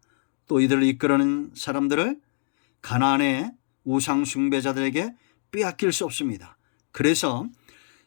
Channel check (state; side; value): silent; right; digital silence